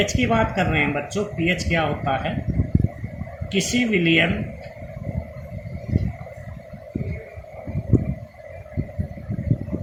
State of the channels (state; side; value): identical; both; correlation 1.00